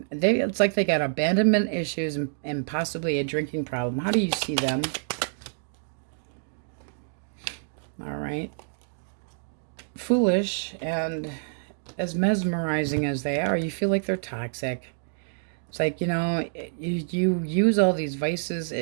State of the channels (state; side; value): silent; left; digital silence